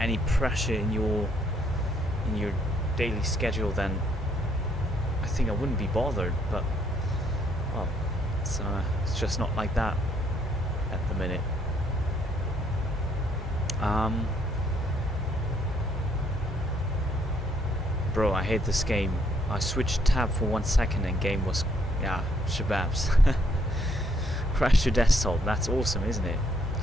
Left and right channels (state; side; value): normal; both; correlation 0.69